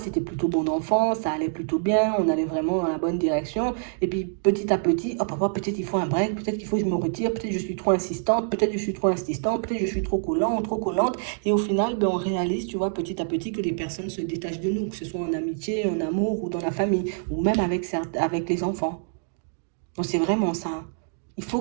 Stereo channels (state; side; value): silent; left; digital silence